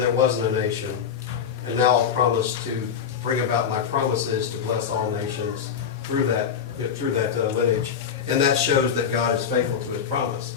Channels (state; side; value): quieter; right; 7.6 dB